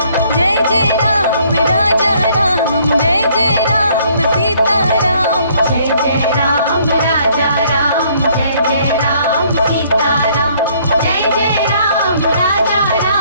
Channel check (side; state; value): both; inverted; correlation -0.63